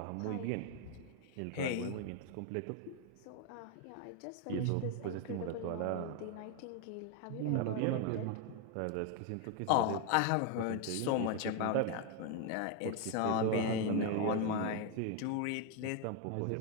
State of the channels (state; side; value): different; both; correlation 0.01